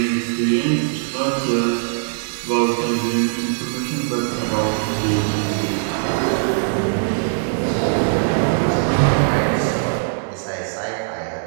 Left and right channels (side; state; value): left; silent; digital silence